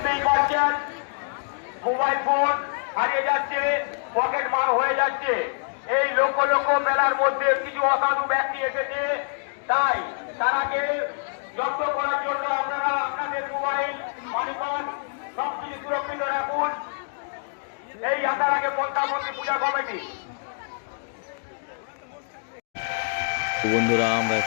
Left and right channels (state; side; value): silent; right; digital silence